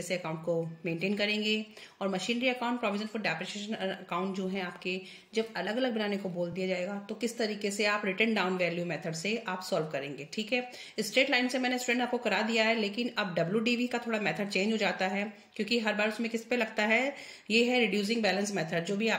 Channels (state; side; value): identical; both; correlation 1.00